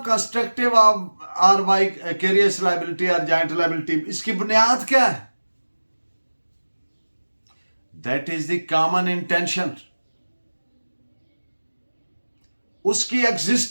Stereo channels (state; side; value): inverted; both; correlation -1.00